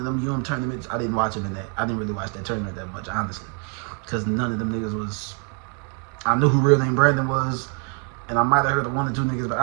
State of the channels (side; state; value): left; quieter; 39.2 dB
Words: them tournaments. I didn't watch him in that. I didn't really watch that tournament that much, honestly, because none of them niggas was. I knew who Real Name Brandon was, and I might have heard of one or two niggas, but